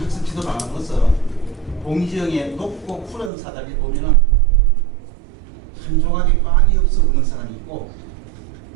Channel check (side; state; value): left; drops out; at 3.3 s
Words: 학습 지도 방안으로서 공지영의 높고 푸른 사다리 보면은 한 조각의 빵이 없어 우는 사람이 있고